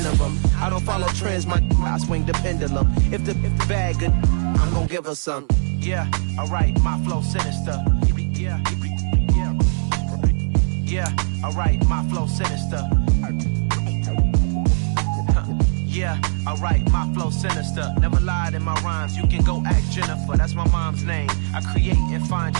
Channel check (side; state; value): left; silent; 65 dB below the other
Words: of them. I don't follow trends, I swing the pendulum. If the bag good, I'm gonna give her some. Yeah, alright, my flow sinister. Yeah, alright, my flow sinister. Yeah, alright, my flow sinister. Never lied in my rhymes, you can go ask Jennifer. That's my mom's name. I create and find